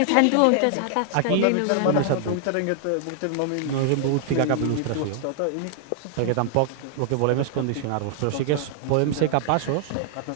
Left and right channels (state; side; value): different; both; correlation 0.00